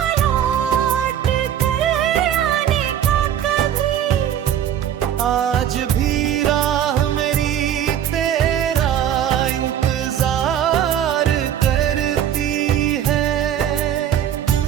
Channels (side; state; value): left; quieter; 10.1 dB